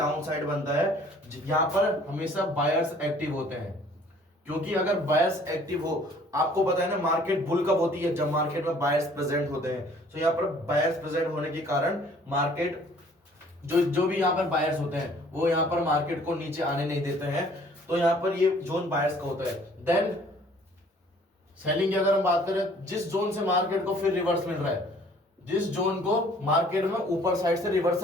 साइड बनता है, यहां पर हमेशा बायर्स एक्टिव होते हैं। क्योंकि अगर बायर्स एक्टिव हो, आपको पता है ना मार्केट बुल कब होती है, जब मार्केट में बायर्स प्रेजेंट होते हैं। तो यहाँ पर बायर्स प्रेजेंट होने के कारण मार्केट जो भी यहाँ पर बायर्स होते हैं वो यहाँ पर मार्केट को नीचे आने नहीं देते हैं। तो यहाँ पर ये जोन बायर्स का होता है। देन सेलिंग की अगर हम बात करें, जिस जोन से मार्केट को फिर रिवर्स मिल रहा है, जिस जोन को मार्केट में ऊपर साइड से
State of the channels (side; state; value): both; normal; correlation 0.56